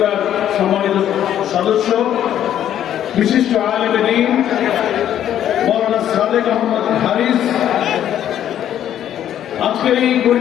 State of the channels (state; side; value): quieter; right; 10.8 dB